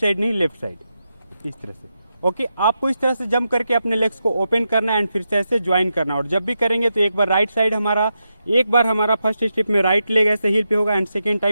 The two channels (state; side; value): inverted; both; correlation -0.87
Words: नहीं लेफ्ट साइड, इस तरह से। ओके, आपको इस तरह से जंप करके अपने लेग्स को ओपन करना है एंड फिर से ऐसे ज्वाइन करना। और जब भी करेंगे तो एक बार राइट साइड हमारा, एक बार हमारा फर्स्ट स्टेप में राइट लेग ऐसे हील पे होगा and second